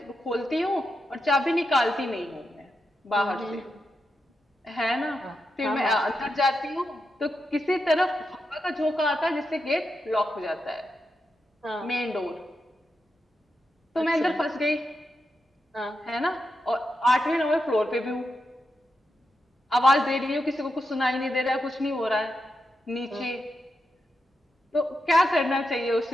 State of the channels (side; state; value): both; normal; correlation 0.87